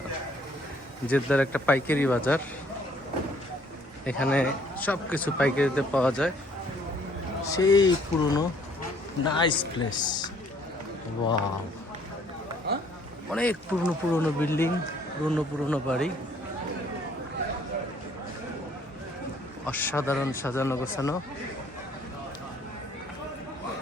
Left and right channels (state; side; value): normal; both; correlation 0.62